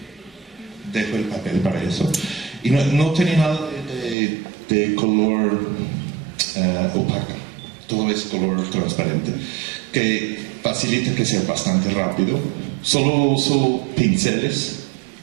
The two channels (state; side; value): drops out; left; at 4.2 s